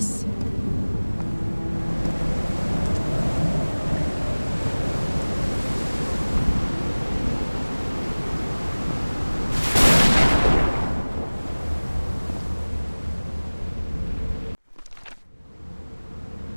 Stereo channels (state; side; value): inverted; both; correlation -1.00